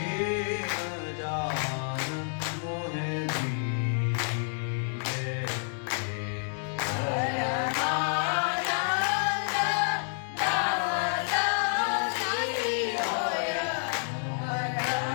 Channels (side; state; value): right; silent; digital silence